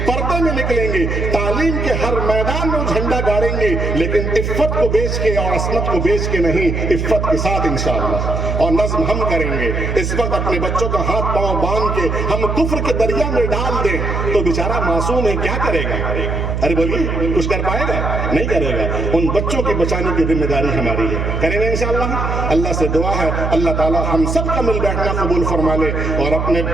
پردے میں نکلیں گی، تعلیم کے ہر میدان میں جھنڈا گاڑیں گی، لیکن عفت کو بیچ کے اور عصمت کو بیچ کے نہیں، عفت کے ساتھ انشاءاللہ۔ اور نظم ہم کریں گے۔ اس وقت اپنے بچوں کا ہاتھ پاؤں باندھ کے ہم کفر کے دریا میں ڈال دیں تو بیچارہ معصوم ہے، کیا کرے گا؟ ارے بولیے، کچھ کر پائے گا؟ نہیں کرے گا۔ ان بچوں کی بچانے کی ذمہ داری ہماری ہے، کریں گے انشاءاللہ۔ اللہ سے دعا ہے اللہ تعالی ہم سب کا مل بیٹھنا قبول فرما لے، اور اپنے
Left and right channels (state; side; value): noise; right; hum, 2 dB below the sound